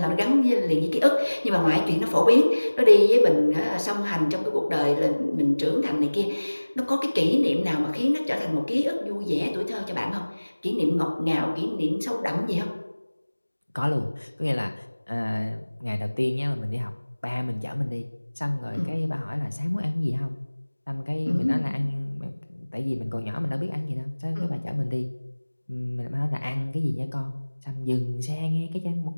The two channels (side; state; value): both; inverted; correlation -1.00